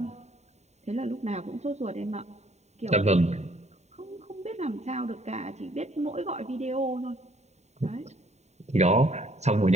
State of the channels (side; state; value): left; late; 0.32 ms